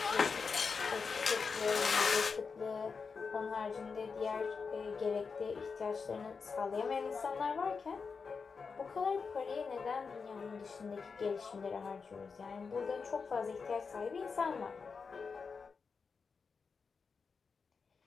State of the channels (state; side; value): quieter; right; 5.2 dB